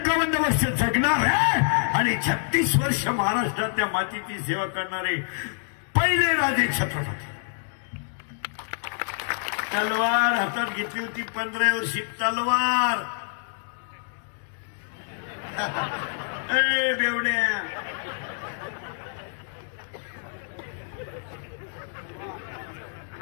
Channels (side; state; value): right; silent; digital silence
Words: वर्ष जगणार आहे आणि 36 वर्ष महाराष्ट्रातल्या मातीची सेवा करणारे पहिले राजे छत्रपती. तलवार हातात घेतली होती 15 वर्षी तलवार. ए बेवड्या